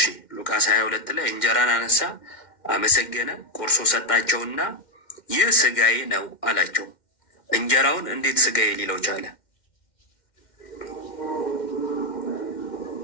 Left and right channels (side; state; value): right; late; 2.1 ms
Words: 22 ላይ እንጀራን አነሳ፣ አመሰገነ፣ ቆርሶ ሰጣቸውና ይህ ስጋዬ ነው አላቸው። እንጀራውን እንዴት ስጋዬ ሊለው ቻለ?